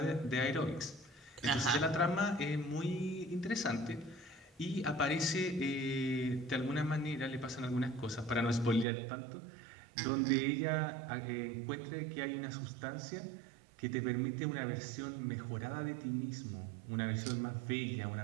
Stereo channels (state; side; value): drops out; left; at 8.8 s